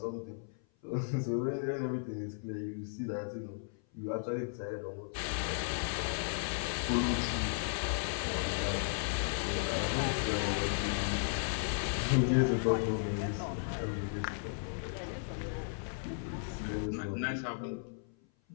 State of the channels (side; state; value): right; silent; 54 dB below the other